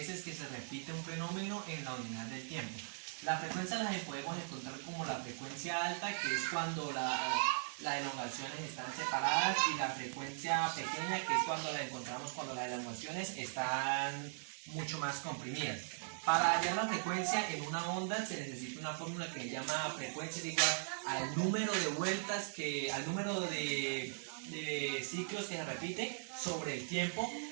que se repite un fenómeno en la unidad del tiempo. La frecuencia la podemos encontrar como la frecuencia alta, que es cuando las elongaciones están separadas, y la frecuencia pequeña, que es cuando la encontramos cuando las elongaciones están mucho más comprimidas. Para hallar la frecuencia en una onda se necesita una fórmula que se llama frecuencia igual al número de vueltas al número de ciclos que se repite sobre el tiempo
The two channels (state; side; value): silent; left; digital silence